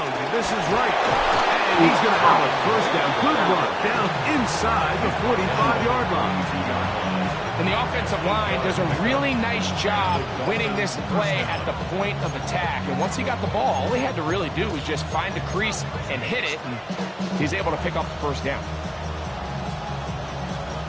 this is right. And he's going to have a first down. Good run down inside the 45-yard line. And the offensive line does a really nice job winning this play at the point of attack. And once he got the ball, all he had to really do was just find a crease and hit it. And he's able to pick up the first down.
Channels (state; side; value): identical; both; correlation 1.00